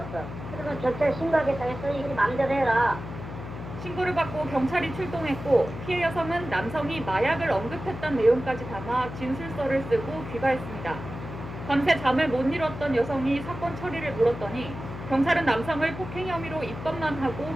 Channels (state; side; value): noise; left; hum, 10 dB below the sound